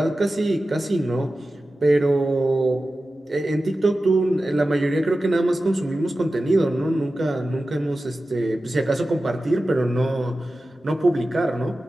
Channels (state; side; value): normal; both; correlation 0.94